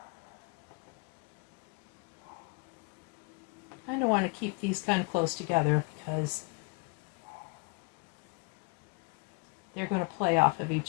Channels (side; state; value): right; quieter; 31.2 dB